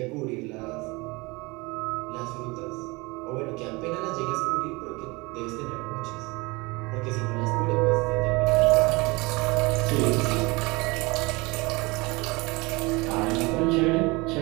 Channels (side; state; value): left; quieter; 24.9 dB